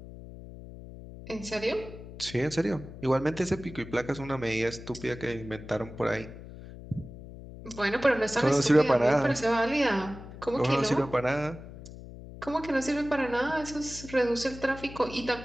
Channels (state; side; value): noise; left; hum, 14 dB below the sound